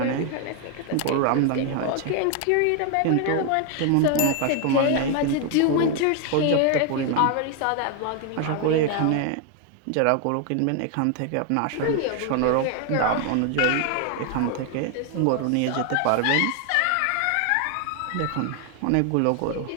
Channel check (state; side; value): different; both; correlation 0.01